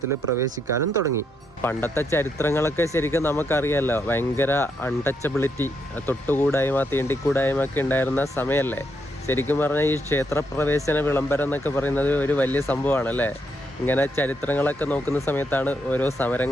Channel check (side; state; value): both; normal; correlation 0.78